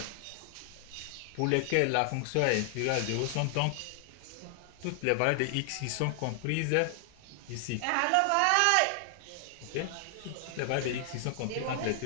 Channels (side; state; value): both; different; correlation 0.00